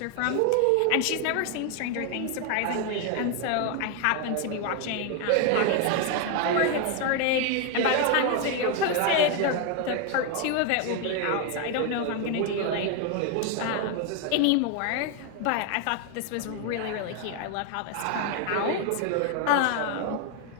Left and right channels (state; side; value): different; both; correlation 0.01